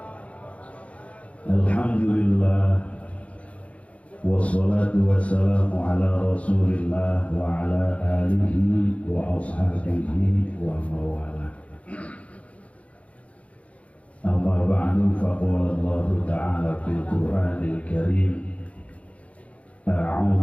Alhamdulillah wassalatu wassalamu ala rasulillah wa ala alihi wa ashabihi wa mawala. Amma ba'du, faqala Allah ta'ala fil Qur'anil Karim:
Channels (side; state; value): right; late; 0.064 ms